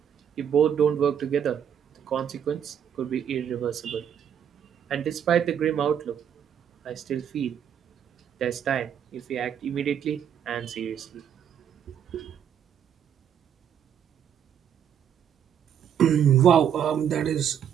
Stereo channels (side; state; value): left; quieter; 8.7 dB